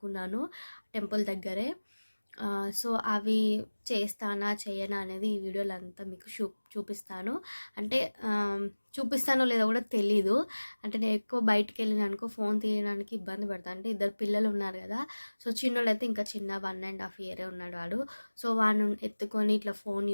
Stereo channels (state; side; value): inverted; both; correlation -1.00